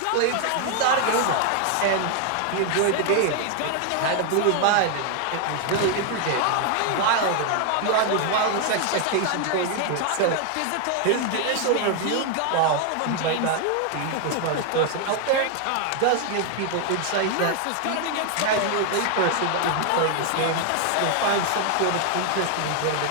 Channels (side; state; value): both; different; correlation 0.00